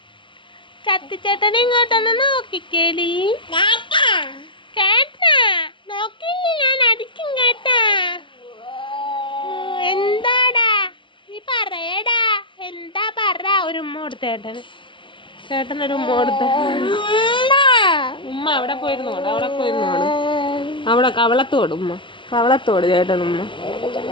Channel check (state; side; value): late; right; 0.24 ms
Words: സത്യചേട്ടനെ ഇങ്ങോട്ടൊന്ന് നോക്കിക്കേടി. കേട്ടാ, നോക്കില്ലേ ഞാൻ അടിക്കും കേട്ടാ. എന്താടാ നീ പറയടാ, എന്താ പറ. ഒരു ഉമ്മ കൊടുത്ത ചേട്ടന്, ചേട്ടനൊരു ഉമ്മ കൊടുത്ത. ഉമ്മ അവിടെ പോയിരുന്നോട്, അവിടെ പോയിരുന്നോട്, അവിടെ കവളത്തോട് ഉമ്മ, കവളത്തോട് ചേട്ടൻ ഉമ്മ,